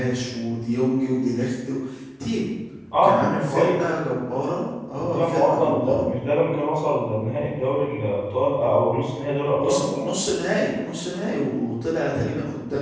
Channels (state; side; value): identical; both; correlation 1.00